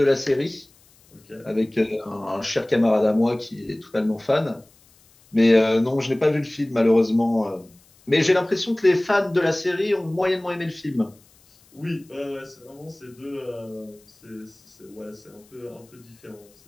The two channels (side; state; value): left; noise; hiss, 30 dB below the sound